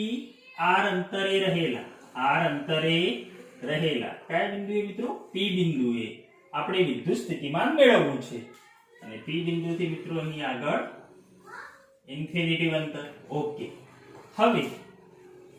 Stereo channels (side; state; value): both; identical; correlation 1.00